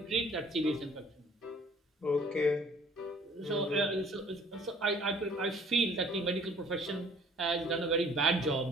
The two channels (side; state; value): both; normal; correlation 0.55